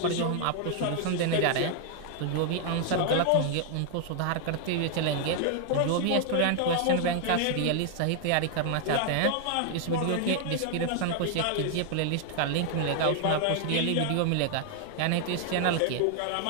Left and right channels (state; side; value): different; both; correlation 0.00